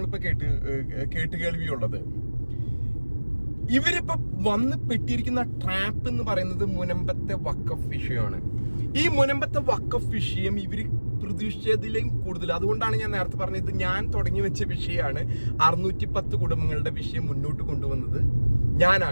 കേട്ടുകേൾവിയുള്ളത്. ഇവരിപ്പോ വന്ന് പെട്ടിരിക്കുന്ന ട്രാപ്പ് എന്ന് പറയുന്നത് മുനമ്പത്തെ വഖഫ് വിഷയമാണ്. ഈ മുനമ്പത്തെ വഖഫ് വിഷയം ഇവര് പ്രതീക്ഷിച്ചതിലും കൂടുതൽ, അതുകൊണ്ടാണ് ഞാൻ നേരത്തെ പറഞ്ഞത്, ഞാൻ തുടങ്ങി വെച്ച വിഷയമാണ്. 610 കുടുംബങ്ങളുടെ വിഷയം മുന്നോട്ട് കൊണ്ടുവന്നത്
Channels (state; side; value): inverted; both; correlation -1.00